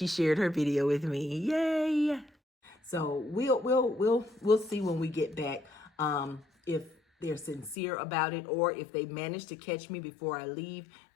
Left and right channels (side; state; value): right; drops out; at 7.8 s